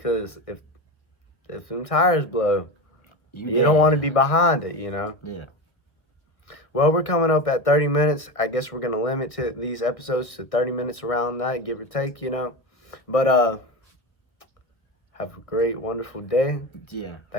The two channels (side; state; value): right; late; 1.3 ms